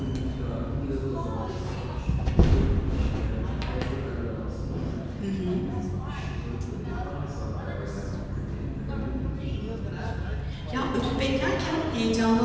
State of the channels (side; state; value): both; identical; correlation 1.00